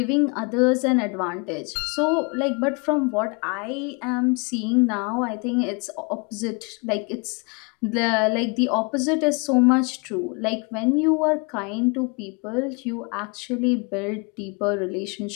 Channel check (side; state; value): right; quieter; 32.4 dB